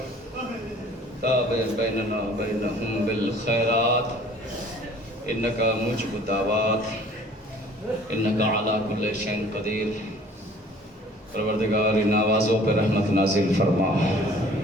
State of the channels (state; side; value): normal; both; correlation 0.51